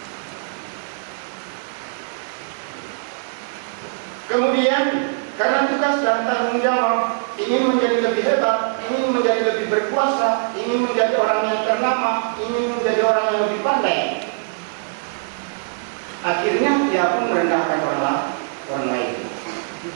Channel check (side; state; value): left; silent; 64 dB below the other